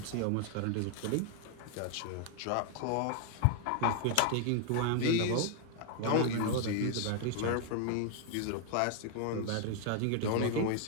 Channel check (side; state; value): both; different; correlation 0.00